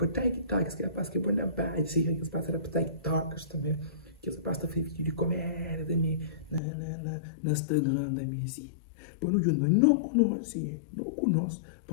TikTokers, que rapaz que é bom na base, sei que eles passaram para TikTokers também, que rapaz que fez vídeo de comédia também, no Instagram também, assim. Para não juntar, não conhece,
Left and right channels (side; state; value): right; drops out; at 6.6 s